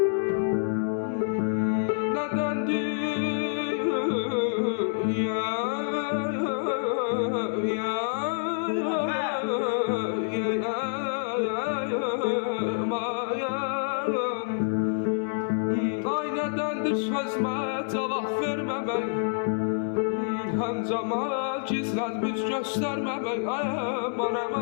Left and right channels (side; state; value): right; silent; digital silence